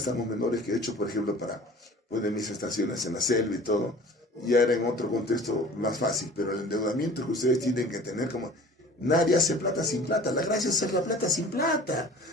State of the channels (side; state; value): both; normal; correlation 0.44